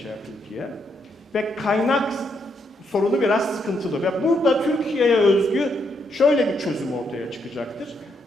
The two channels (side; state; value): both; normal; correlation 0.77